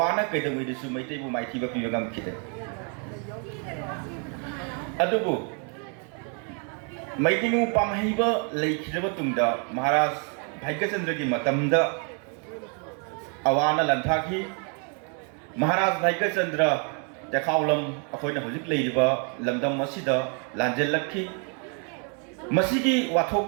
ꯀꯩꯗꯧꯉꯩꯗꯁꯨ ꯃꯩꯇꯩꯕꯨ ꯃꯥꯏꯊꯤꯕ ꯄꯤꯕ ꯉꯝꯈꯤꯗꯦ ꯑꯗꯨꯕꯨ ꯃꯩꯇꯩꯉꯨ ꯄꯥꯝꯍꯩꯕ ꯂꯩꯈꯤꯗ꯭ꯔꯕ ꯇꯨꯡꯗ ꯃꯍꯥꯔꯥꯖ ꯚꯥꯏꯒꯆꯟꯗ꯭ꯔꯒꯤ ꯃꯇꯝꯗ ꯑꯋꯥꯅ ꯂꯟꯊꯥꯈꯤ ꯃꯍꯥꯔꯥꯖ ꯚꯥꯏꯒꯆꯟꯗ꯭ꯔ ꯇꯦꯈꯥꯎꯂꯝ ꯑꯩꯈꯣꯏꯅ ꯍꯧꯖꯤꯛ ꯂꯩꯔꯤꯕ ꯂꯝꯗꯝ ꯑꯁꯤꯗ ꯂꯥꯟꯖꯦꯜꯂꯛꯈꯤ ꯃꯁꯤꯒꯤ ꯋꯥꯊꯣꯛ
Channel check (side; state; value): left; quieter; 39.8 dB